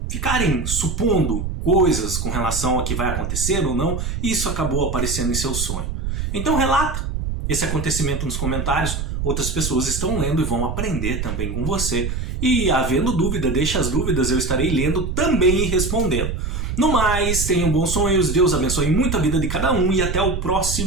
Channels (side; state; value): right; noise; rumble, 3 dB below the sound